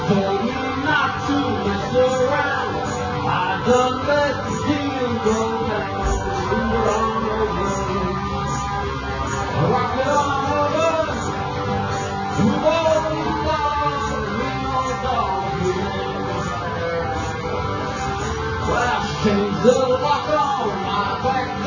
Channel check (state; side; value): identical; both; correlation 1.00